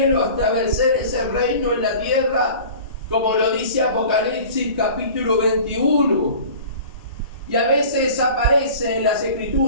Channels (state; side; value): inverted; both; correlation -0.42